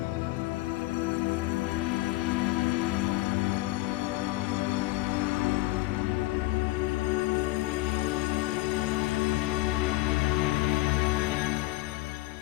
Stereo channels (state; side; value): quieter; right; 19.7 dB